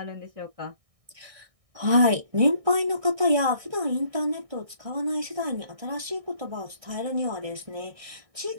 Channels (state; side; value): late; left; 1.6 ms